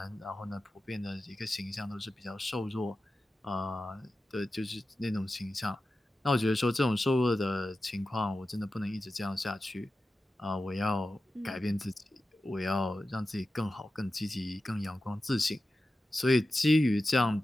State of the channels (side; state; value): both; normal; correlation 0.93